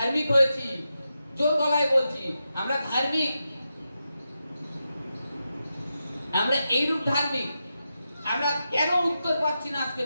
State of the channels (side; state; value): both; inverted; correlation -0.88